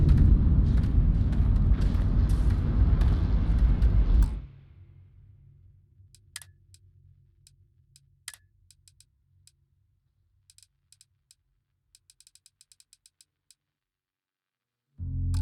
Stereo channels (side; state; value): both; identical; correlation 1.00